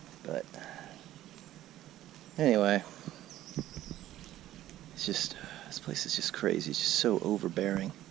But anyway, it's just, this place is just crazy. It's just so overbearing.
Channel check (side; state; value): left; quieter; 13.9 dB